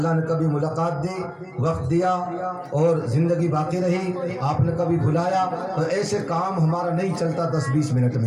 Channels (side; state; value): both; identical; correlation 1.00